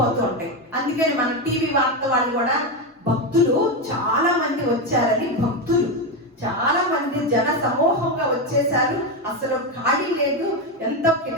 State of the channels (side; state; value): both; normal; correlation 0.11